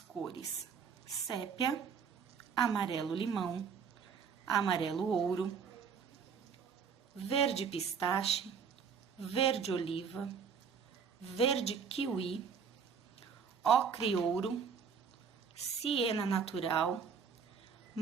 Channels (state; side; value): quieter; left; 6.5 dB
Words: sépia, amarelo limão, amarelo ouro, verde pistache, verde oliva, verde kiwi, ocre ouro, siena natural,